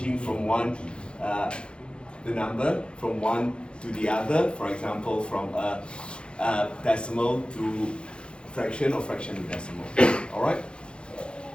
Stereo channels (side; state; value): right; late; 0.055 ms